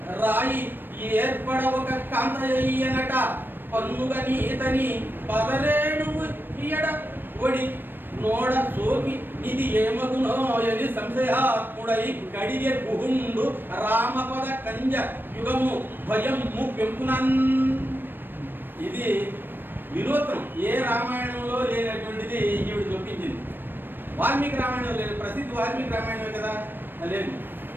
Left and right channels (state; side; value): late; left; 0.095 ms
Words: రాయి ఏర్పడ ఒక కాంతయ్యనట పన్నుగా నీతని పదరేణువు ఇయడ ఒడి నోడ సోకి ఇది ఏమగునో అని సంశయాత్ముడై కడిగే గుహుండు రామపద కంజ యుగము భయము పెంపునన్. ఇది వినూత్నం, ఏ రామాయణంలో లేనటువంటిది ఈవిడ చూపించింది. వాల్మీకి రామాయణం లేదు, ప్రసిద్ధ వాల్మీకి రామాయణమే కదా లేదు.